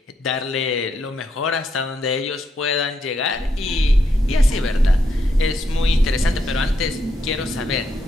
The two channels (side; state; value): both; normal; correlation 0.79